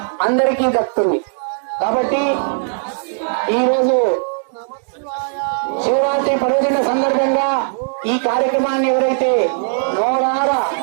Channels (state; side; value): silent; left; digital silence